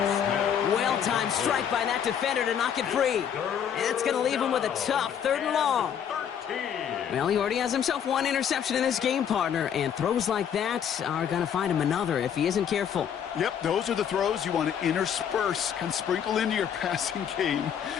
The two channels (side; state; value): right; quieter; 8.5 dB